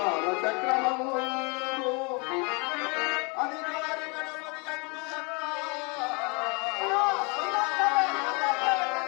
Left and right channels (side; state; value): right; quieter; 31.2 dB